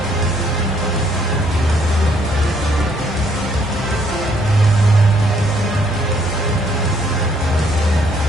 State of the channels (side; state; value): both; normal; correlation 0.67